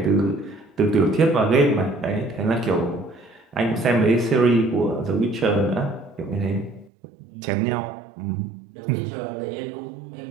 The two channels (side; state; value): left; drops out; at 6.9 s